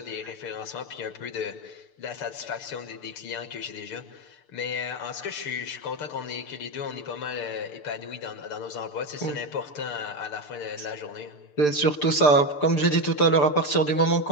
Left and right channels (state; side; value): late; right; 6.7 ms